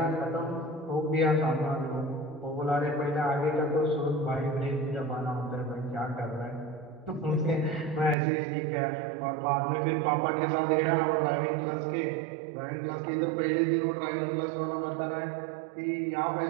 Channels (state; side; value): drops out; left; at 8.2 s